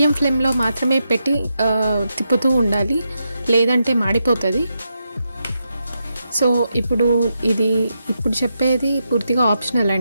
ఫ్లేమ్లో మాత్రమే పెట్టి తిప్పుతూ ఉండాలి, లేదంటే మాడిపోతుంది. సో ఇప్పుడు చెప్పేది పూర్తిగా ఆప్షనల్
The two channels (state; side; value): inverted; both; correlation -0.85